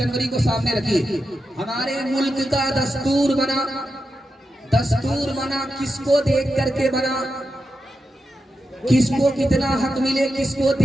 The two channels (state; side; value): normal; both; correlation 0.88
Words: को सामने रखिए। हमारे मुल्क का दस्तूर बना, दस्तूर बना किसको देख करके बना, किसको कितना हक मिले किसको